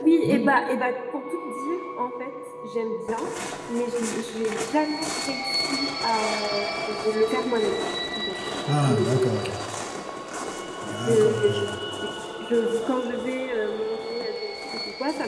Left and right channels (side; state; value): both; identical; correlation 1.00